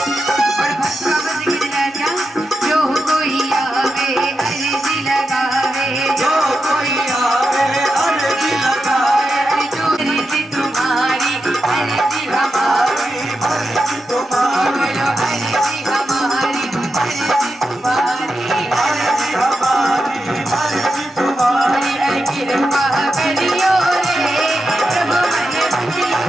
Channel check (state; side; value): normal; both; correlation 0.88